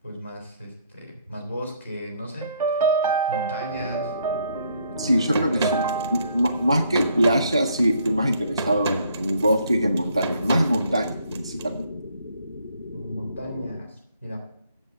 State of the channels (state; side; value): inverted; both; correlation -0.67